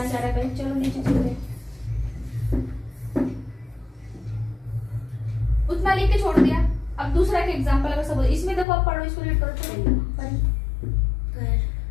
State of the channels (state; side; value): drops out; right; at 8.7 s